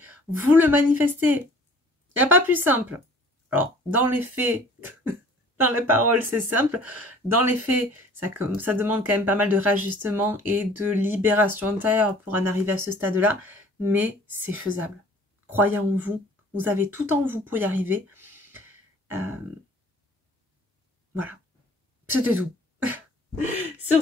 vous le manifestez. Il n'y a pas plus simple. Alors, dans les faits, dans les paroles, c'est simple. Dans les faits, ça demande quand même pas mal de réajustement et de libération intérieure pour en arriver à ce stade-là. Mais c'est faisable. Croyez en vous. Vous avez tout en vous pour y arriver. Voilà. C'était tout. Sur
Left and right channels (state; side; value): normal; both; correlation 0.51